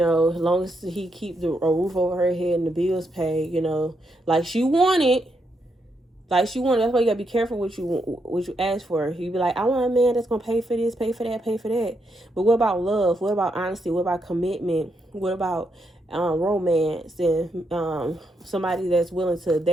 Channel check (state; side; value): normal; both; correlation 0.80